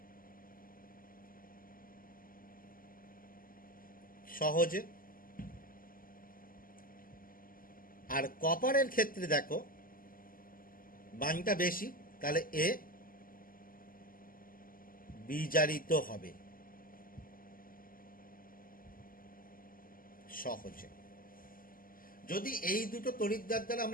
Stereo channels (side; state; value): right; late; 0.41 ms